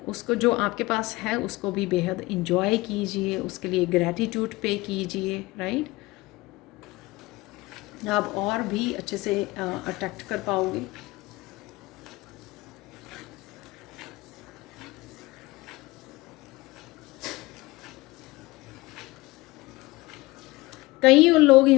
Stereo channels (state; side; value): quieter; right; 21.2 dB